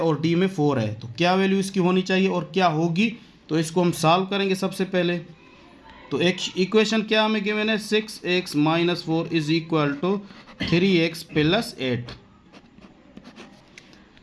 d में 4 है। तो क्या वैल्यू इसकी होनी चाहिए और क्या होगी, तो इसको हम सॉल्व करेंगे सबसे पहले। तो एक इक्वेशन क्या हमें गिवन है, 6x - 4 = 3x + 8।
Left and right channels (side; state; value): both; identical; correlation 1.00